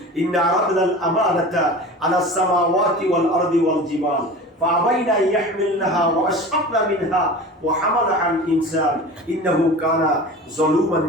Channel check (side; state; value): both; normal; correlation 0.36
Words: ইন্না আরাদনাল আমানাতা আলাস সামাওয়াতি ওয়াল আরদি ওয়াল জিবাল فأبين أن يحملنها وأشفقن منها وحملها الإنسان إنه كان ظلوما